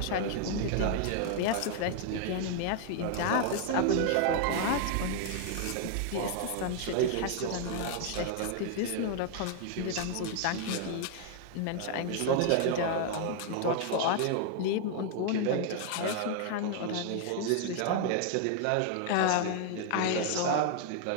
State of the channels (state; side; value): different; both; correlation 0.00